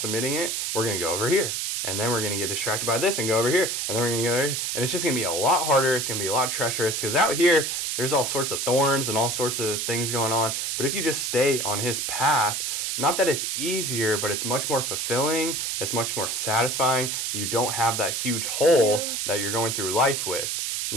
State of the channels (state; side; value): noise; right; hiss, 1 dB below the sound